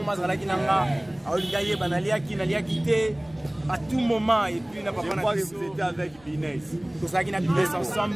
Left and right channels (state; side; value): noise; left; rumble, 28 dB below the sound